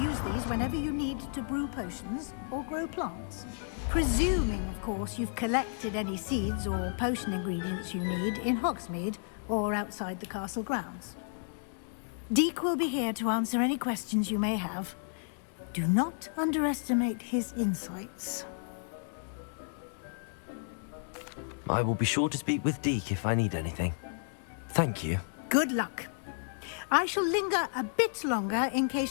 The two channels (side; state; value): right; silent; digital silence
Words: these whenever you need to brew potions or grow plants. Presuming, of course, you've collected any seeds or potion ingredients you need in Hogsmeade or outside the castle grounds. Deek will be here to answer any questions you may have. Do not underestimate his insights. I will be sure to speak with Deke if I need anything. Thank you. Good luck. I shall linger a bit longer in